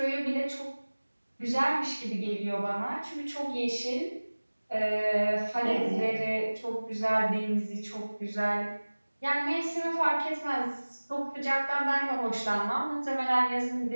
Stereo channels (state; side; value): inverted; both; correlation -1.00